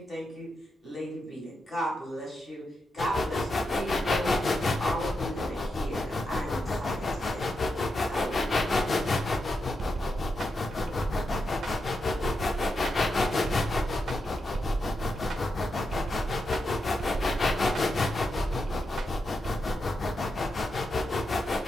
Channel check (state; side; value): normal; both; correlation 0.86